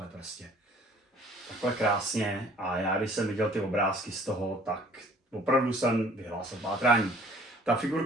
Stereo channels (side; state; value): both; normal; correlation 0.54